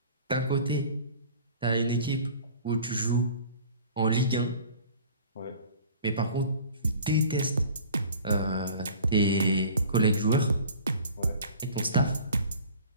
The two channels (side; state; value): both; inverted; correlation -0.46